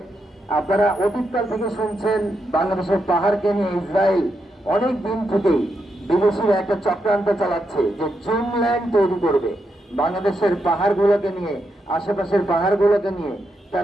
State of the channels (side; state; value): both; normal; correlation 0.83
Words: আপনারা অতীতকাল থেকে শুনছেন বাংলাদেশের পাহাড়কে নিয়ে ইসরায়েল অনেক দিন থেকেই বিদেশিরা একটা চক্রান্ত চালাচ্ছে যে জুমল্যান্ড তৈরি করবে বাংলাদেশের পাহাড়গুলোকে নিয়ে, আশেপাশের পাহাড়গুলোকে নিয়ে